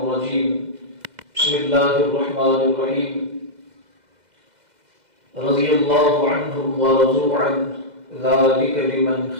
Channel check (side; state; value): left; late; 2.0 ms